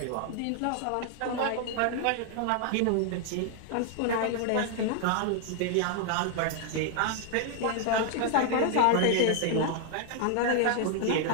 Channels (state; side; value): different; both; correlation 0.00